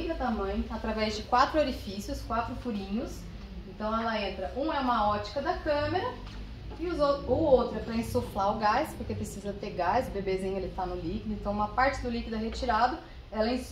da mãe através de 4 orifícios, 4 furinhos. Então ela entra, um é uma ótica da câmera, e o outro é para insuflar o gás, porque precisa ter gás, o bebezinho ele está no líquido, então uma parte do líquido é retirado, ela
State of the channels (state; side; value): identical; both; correlation 1.00